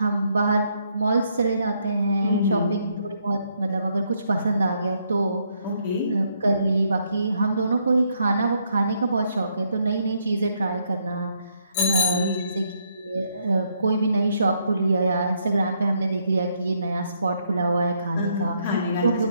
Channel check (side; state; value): both; inverted; correlation -0.74